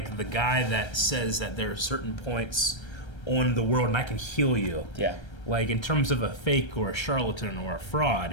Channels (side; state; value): right; late; 1.3 ms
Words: the guy that says that there are certain points on the world and I can heal you. Yeah. Like, in terms of a fake or a charlatan or a